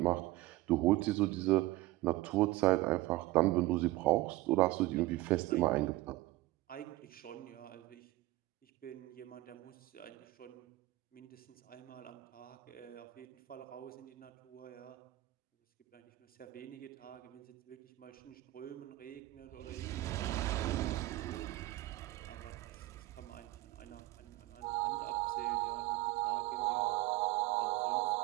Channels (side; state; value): left; quieter; 18.3 dB